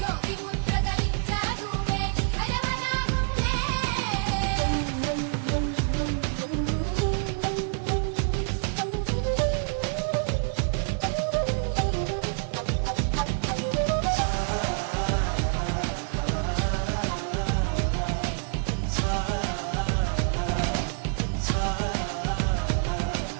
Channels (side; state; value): left; silent; digital silence